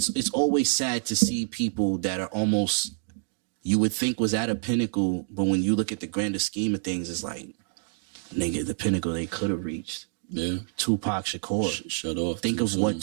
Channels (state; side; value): silent; left; digital silence